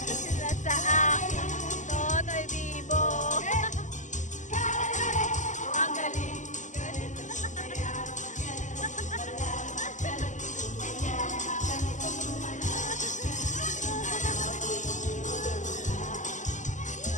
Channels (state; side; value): late; right; 0.36 ms